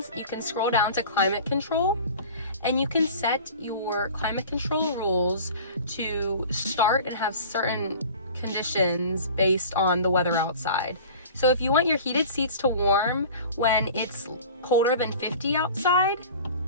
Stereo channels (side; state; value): both; inverted; correlation -0.41